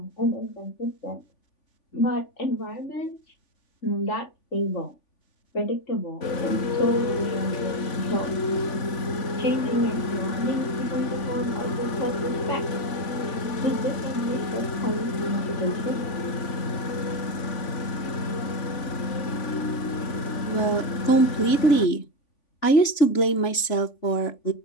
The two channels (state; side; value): late; right; 3.5 ms